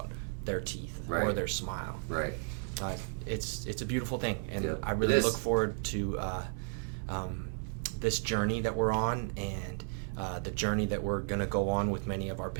their teeth or their smile. Right. It's a beautiful thing, and Yeah, I really look forward to this journey that we're on, and the journey that we're going to go on with many of our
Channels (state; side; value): silent; left; 55 dB below the other